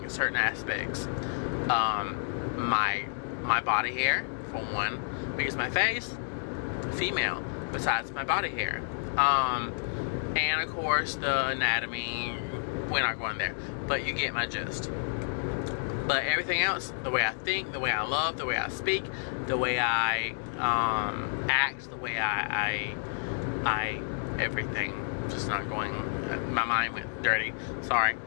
certain aspects. My body hair, for one, because my face, female, besides my body hair. And of course the anatomy, we're not going there, but you get my gist. But everything else, the way I think, the way I love, the way I speak, the way I act, the way I everything, just not going, my mind went dirty, sorry.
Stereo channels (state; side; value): silent; right; digital silence